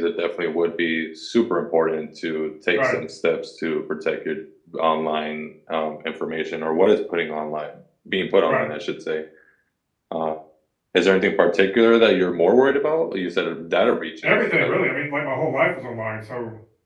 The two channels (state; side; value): identical; both; correlation 1.00